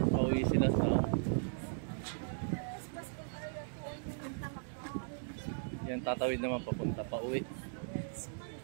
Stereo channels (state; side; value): silent; left; digital silence